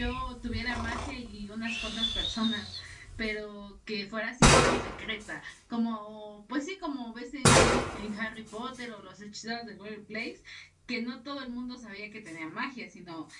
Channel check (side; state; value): both; identical; correlation 1.00